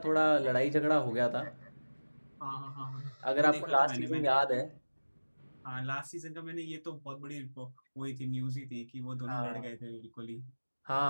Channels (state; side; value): inverted; both; correlation -1.00